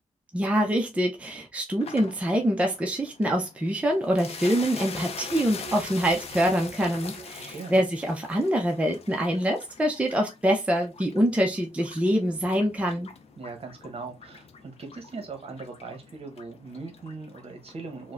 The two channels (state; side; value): normal; both; correlation 0.81